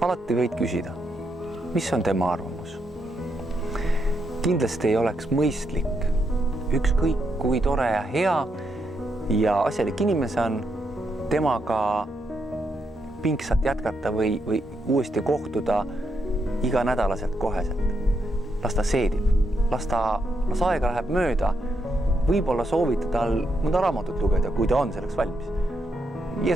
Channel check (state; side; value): normal; both; correlation 0.80